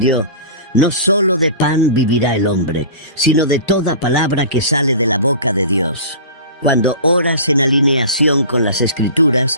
«No solo de pan vivirá el hombre, sino de toda palabra que sale de la boca de Dios». Cuando oras en alineación con las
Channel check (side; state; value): both; inverted; correlation -0.36